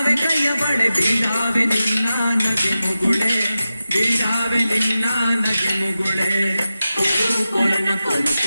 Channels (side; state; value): both; inverted; correlation -0.93